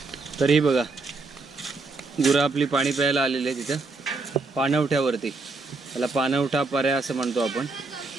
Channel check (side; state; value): left; quieter; 3.7 dB